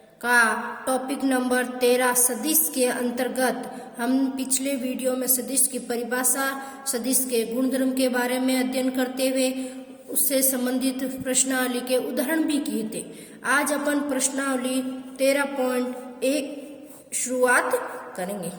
का टॉपिक नंबर 13 सदिश के अंतर्गत हम पिछले वीडियो में सदिश की परिभाषा, सदिश के गुणधर्म के बारे में अध्ययन करते हुए उससे संबंधित प्रश्नावली के उदाहरण भी किए थे। आज अपन प्रश्नावली 13.1 शुरुआत करेंगे।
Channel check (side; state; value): both; identical; correlation 1.00